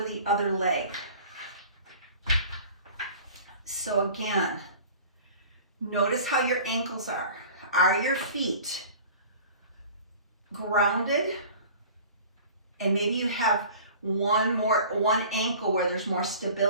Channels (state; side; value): inverted; both; correlation -0.43